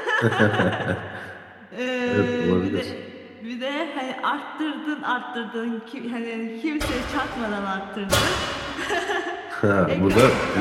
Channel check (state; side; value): identical; both; correlation 1.00